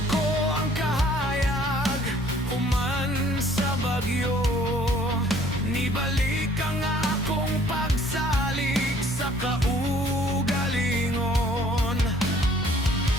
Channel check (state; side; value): normal; both; correlation 0.57